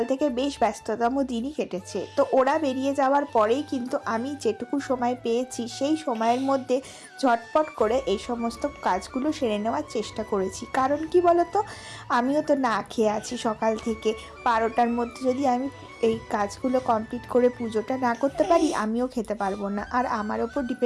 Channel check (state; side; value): identical; both; correlation 1.00